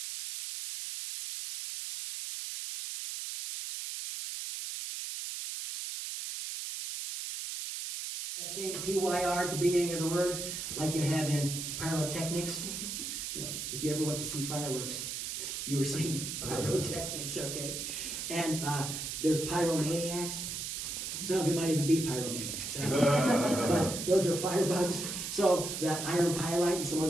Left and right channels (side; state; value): right; noise; hiss, 5 dB below the sound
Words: That same PYR at the beginning of the word, like you have in pyrotechnics. You know, if you ever went to see fireworks, you were seeing pyrotechnics, okay? And there's pyromaniacs. Some of you might even be pyromaniacs. But those are firebugs. So that iron pyrite and some of